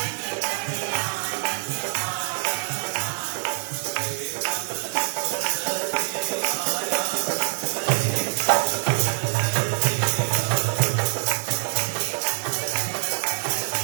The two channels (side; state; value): left; silent; digital silence